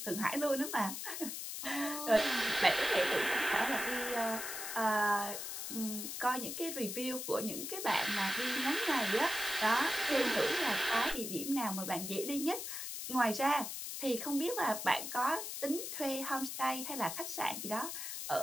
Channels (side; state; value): left; noise; hiss, 6 dB below the sound